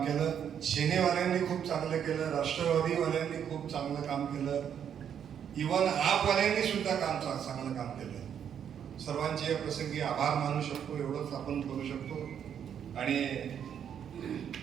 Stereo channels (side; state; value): left; quieter; 8.6 dB